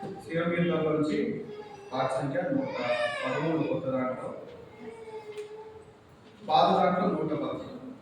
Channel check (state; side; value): identical; both; correlation 1.00